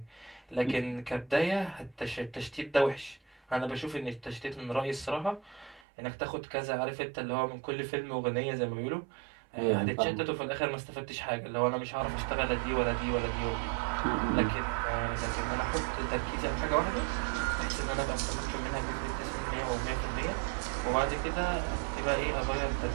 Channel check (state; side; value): drops out; left; at 5.8 s